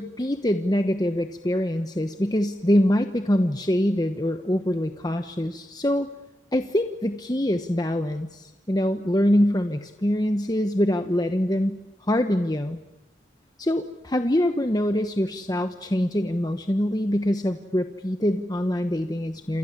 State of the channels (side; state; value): both; normal; correlation 0.88